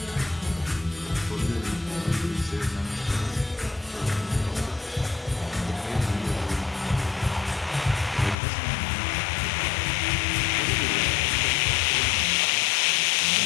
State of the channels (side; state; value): right; drops out; at 8.3 s